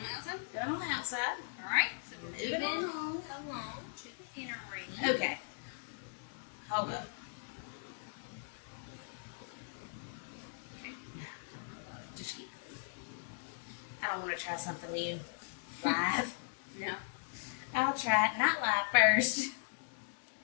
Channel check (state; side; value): silent; right; digital silence